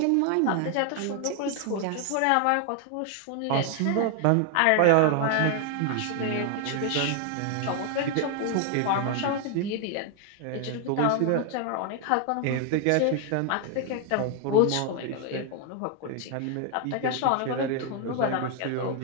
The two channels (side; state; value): both; different; correlation 0.00